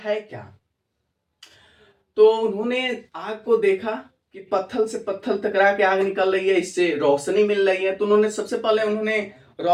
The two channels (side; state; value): both; identical; correlation 1.00